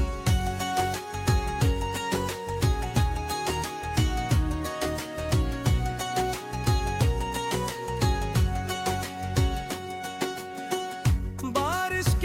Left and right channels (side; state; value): both; identical; correlation 1.00